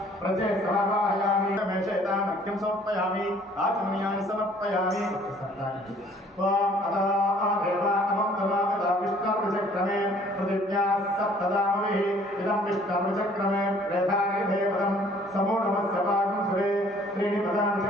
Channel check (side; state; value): both; normal; correlation 0.57